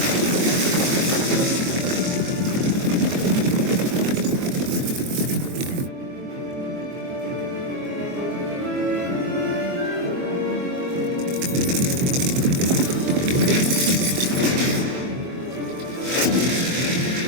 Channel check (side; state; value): left; late; 23 ms